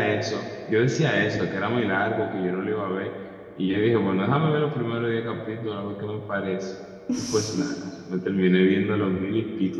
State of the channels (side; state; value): both; identical; correlation 1.00